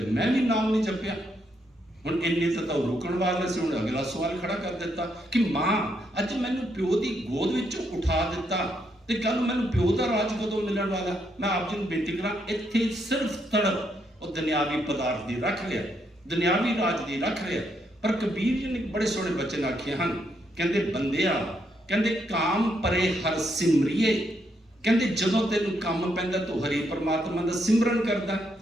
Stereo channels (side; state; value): both; normal; correlation 0.77